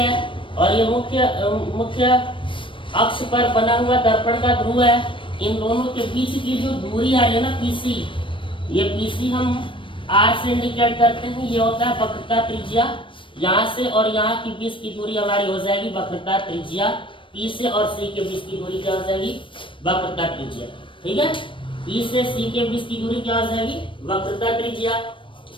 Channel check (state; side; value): late; right; 0.25 ms